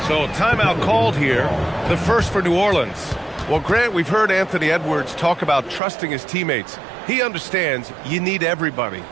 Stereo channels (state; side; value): drops out; left; at 5.8 s